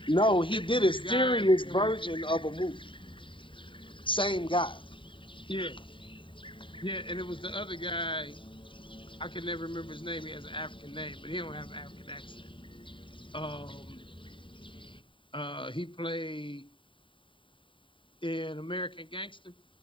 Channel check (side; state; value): right; late; 0.25 ms